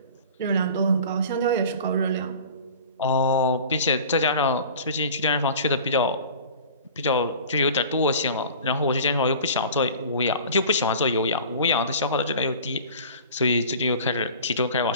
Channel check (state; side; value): inverted; both; correlation -0.41